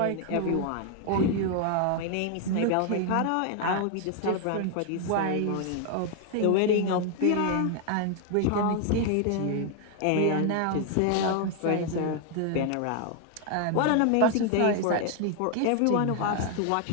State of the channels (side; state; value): both; different; correlation 0.00